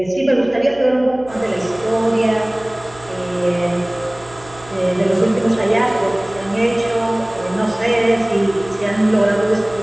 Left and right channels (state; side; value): noise; right; hum, 21 dB below the sound